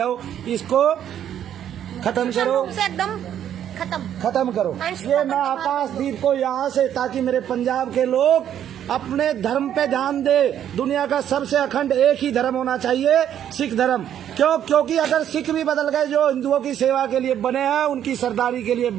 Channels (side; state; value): left; quieter; 10.2 dB